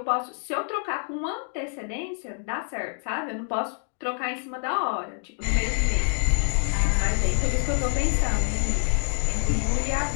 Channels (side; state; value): right; silent; 61 dB below the other